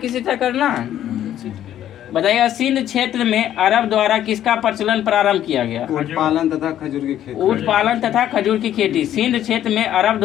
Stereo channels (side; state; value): right; quieter; 11.5 dB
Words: तरह करना है, बताइएगा सिंध क्षेत्र में अरब द्वारा किसका प्रचलन प्रारंभ किया गया? ऊँट पालन तथा खजूर की खेती। ऊँट पालन तथा खजूर की खेती सिंध क्षेत्र में अरब